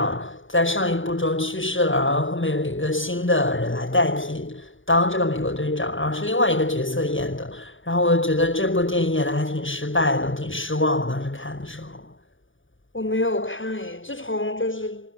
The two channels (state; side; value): late; right; 0.57 ms